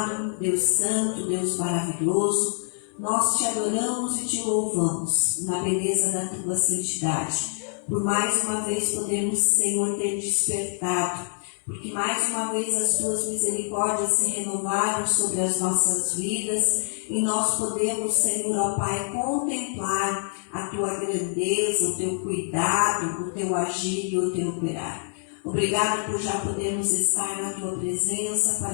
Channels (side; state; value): right; silent; 61 dB below the other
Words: Deus santo, Deus maravilhoso, nós te adoramos e te louvamos na beleza da tua santidade. Por mais uma vez podemos, Senhor, ter despertado, porque mais uma vez as tuas misericórdias se renovaram sobre as nossas vidas e nós podemos, Senhor, ó Pai, contemplar a tua grandeza, o teu cuidado, o teu agir e o teu operar. Obrigado por já podermos estar na tua presença